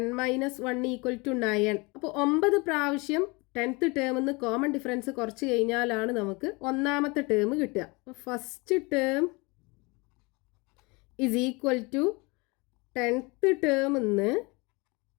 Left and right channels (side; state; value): right; quieter; 26.9 dB